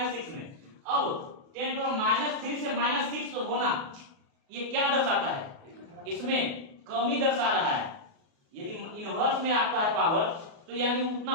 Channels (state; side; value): late; left; 36 ms